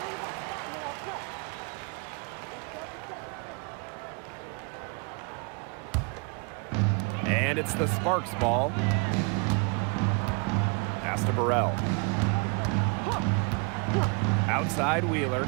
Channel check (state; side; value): quieter; left; 33.8 dB